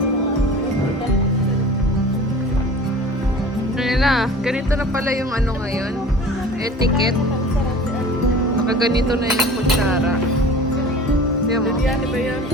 Ganito na pala yung ano ngayon, etiquette. Nakaganito na yung kutsara. Di mo? Biryani ba yan?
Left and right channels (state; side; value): normal; both; correlation 0.41